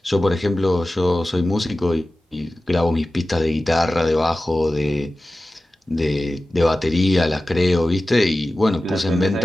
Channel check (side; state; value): both; normal; correlation 0.95